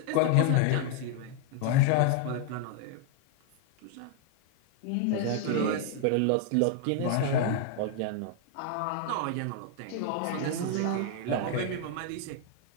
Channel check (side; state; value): both; different; correlation 0.00